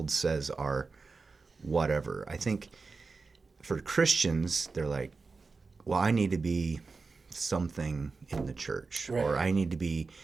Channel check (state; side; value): quieter; left; 4.3 dB